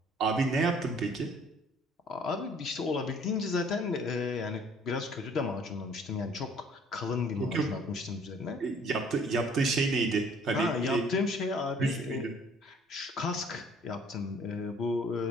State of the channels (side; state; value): both; normal; correlation 0.57